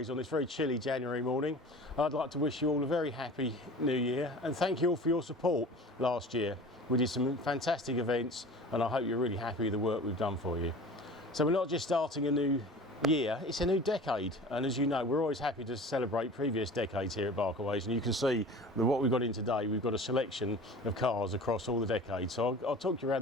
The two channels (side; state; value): both; normal; correlation 0.40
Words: on this very chilly January morning. I'd like to wish you all a very happy new year and thank you all for your support last year. We did some fantastic events and I hope you're really happy with the work we've done for you. So we're not just starting a new year, it's a new decade, and as you know we're always happy to celebrate previous decades here at Barkaways, and you can see that what we've got in today, we've got a selection of cars across all the decades. So I'll talk you